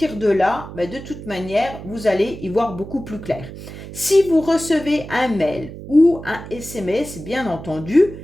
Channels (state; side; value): noise; right; hum, 12 dB below the sound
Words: de là, de toute manière, vous allez y voir beaucoup plus clair. Si vous recevez un mail ou un SMS, bien entendu,